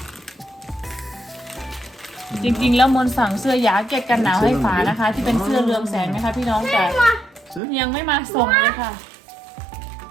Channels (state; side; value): drops out; left; at 7.6 s